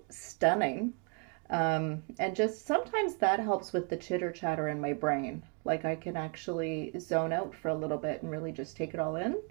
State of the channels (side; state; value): left; quieter; 36.5 dB